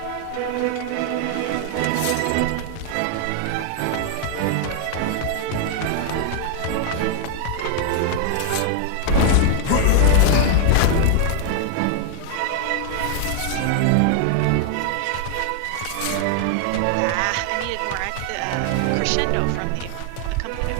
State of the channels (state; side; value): different; both; correlation 0.00